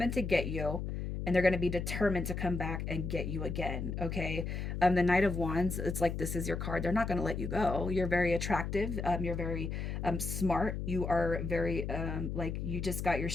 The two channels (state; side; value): noise; left; hum, 4 dB below the sound